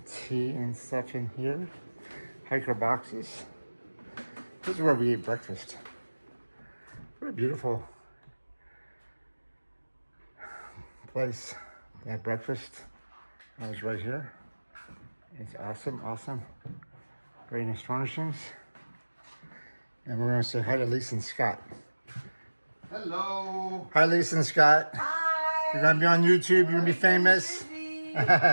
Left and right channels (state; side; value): inverted; both; correlation -1.00